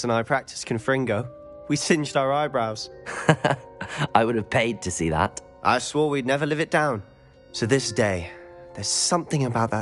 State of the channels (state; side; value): identical; both; correlation 1.00